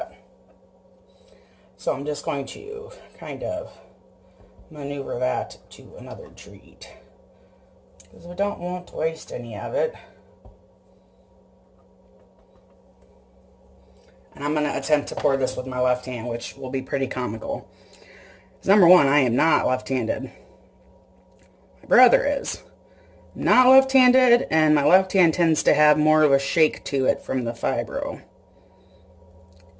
So I'm just going to kind of maneuver that to another treat, because we don't want to waste any of it. And I'm going to attempt to pour this with my left hand, which will be pretty comical. Because number one, I am not left-handed. My brother is. Not left-handed, and my left hand tends to have more of a shake to it from the fibro.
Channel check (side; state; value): both; identical; correlation 1.00